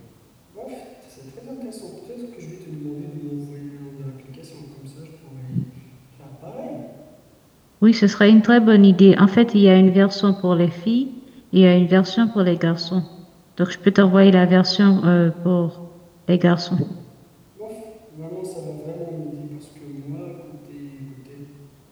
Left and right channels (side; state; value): both; identical; correlation 1.00